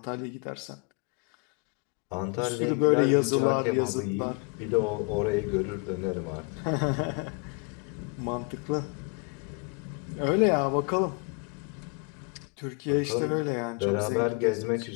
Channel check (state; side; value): quieter; right; 32.3 dB